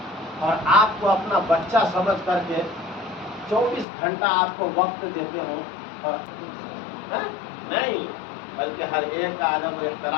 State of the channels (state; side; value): drops out; right; at 3.9 s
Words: اور آپ کو اپنا بچہ سمجھ کر کے 24 گھنٹہ آپ کو وقت دیتے ہوں, اور نہیں بلکہ ہر ایک کا ادب و